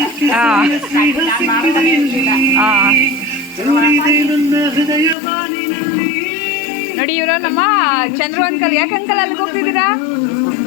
ನೋಡಿ ಇವರು ನಮ್ಮ ಚಂದ್ರು ಅಂಕಲ್. ಯಾಕೆ ಅಂಕಲ್ ಅಲ್ಲಿಗೆ ಹೋಗ್ತಿದ್ದೀರಾ?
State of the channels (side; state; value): right; drops out; at 5.2 s